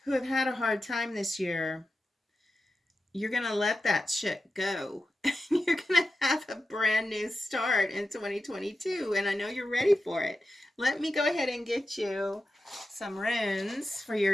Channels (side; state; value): both; normal; correlation 0.91